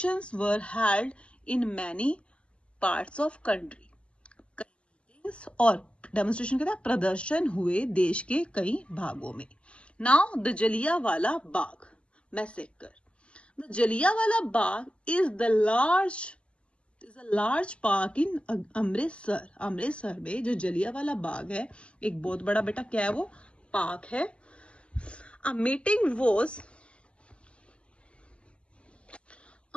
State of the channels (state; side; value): late; right; 0.056 ms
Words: were held in many parts of country. Meetings और डेमोन्स्ट्रेशन के साथ प्रदर्शन हुए देश के कई भागों में. Now the Jallianwala Bagh massacre. The Jallianwala Bagh is a large park in Amritsar. Amritsar में जो जलियांवाला बाग है, एक बहुत बड़ा, बेटा क्या है वो, पार्क है. A meeting